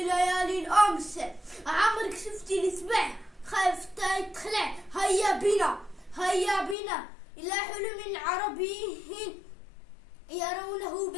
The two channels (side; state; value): right; drops out; at 6.8 s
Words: الأمس. عمرك شفتي السبع خايف تخلع. هيا بنا إلى حلم عربي يرونه